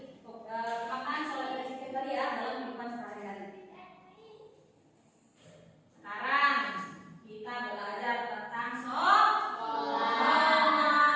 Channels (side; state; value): both; identical; correlation 1.00